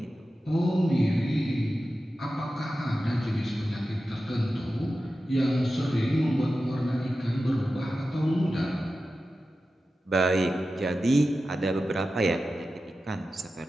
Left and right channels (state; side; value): normal; both; correlation 0.93